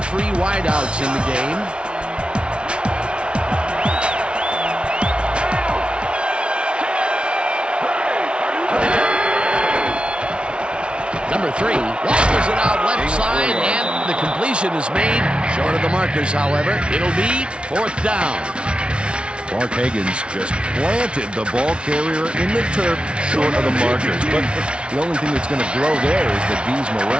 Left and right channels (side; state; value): left; late; 0.058 ms